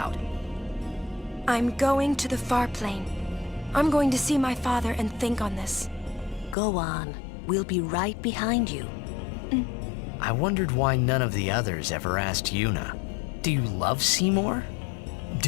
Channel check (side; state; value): right; drops out; at 6.6 s